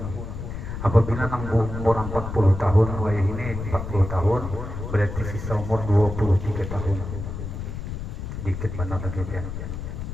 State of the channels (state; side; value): noise; left; rumble, 7 dB below the sound